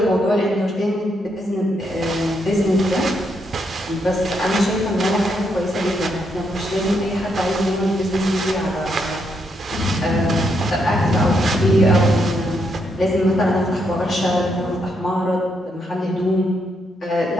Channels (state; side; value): normal; both; correlation 0.78